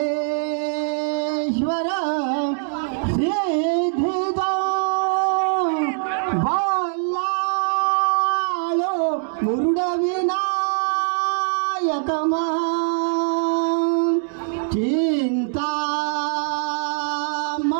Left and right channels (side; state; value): left; silent; 64 dB below the other